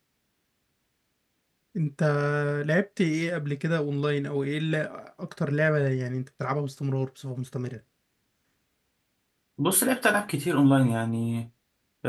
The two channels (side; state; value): both; identical; correlation 1.00